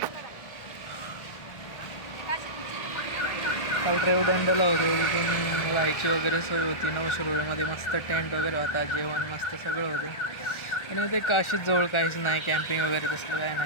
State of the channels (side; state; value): right; late; 1.4 ms